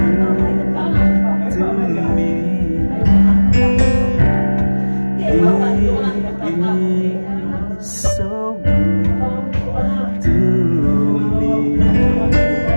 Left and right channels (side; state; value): both; inverted; correlation -1.00